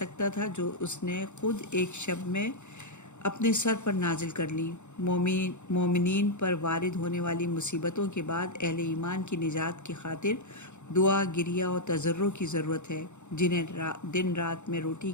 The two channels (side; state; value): right; late; 0.83 ms